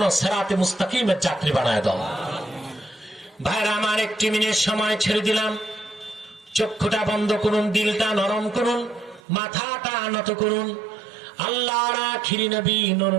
সিরাতে মুস্তাকিমের যাত্রী বানায় দাও। ভাইরা আমার, একটি মিনিট সময় ছেড়ে দিলাম। চক্ষুটা বন্ধ করুন, দিলটা নরম করুন, মাথাটা নত করুন। আল্লাহর আখিরি নবী নূর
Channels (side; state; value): left; drops out; at 9.2 s